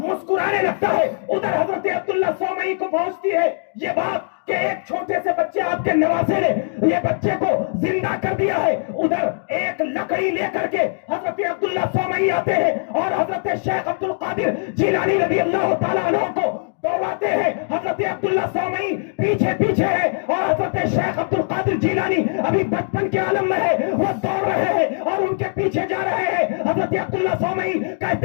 لگتا ہے۔ ادھر حضرت عبداللہ سومئی کو پہنچتی ہے یہ بات کہ ایک چھوٹے سے بچے آپ کے نواسے نے یہ بچے کو زندہ کر دیا ہے۔ ادھر ایک لکڑی لے کر کے حضرت عبداللہ سومئی آتے ہیں اور حضرت شیخ عبد القادر جیلانی رضی اللہ تعالیٰ عنہ کو دوڑاتے ہیں۔ حضرت عبداللہ سومئی پیچھے پیچھے ہے اور حضرت شیخ عبد القادر جیلانی ابھی بچپن کے عالم میں ہے، وہ دوڑ رہے ہیں اور ان کے پیچھے جا رہے ہیں۔ حضرت عبداللہ سومئی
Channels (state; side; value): silent; right; digital silence